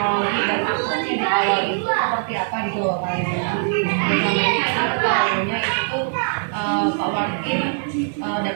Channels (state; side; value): silent; left; digital silence